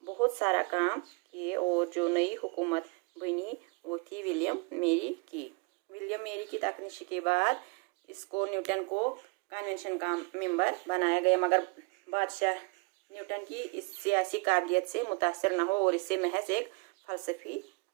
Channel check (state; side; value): quieter; left; 30.8 dB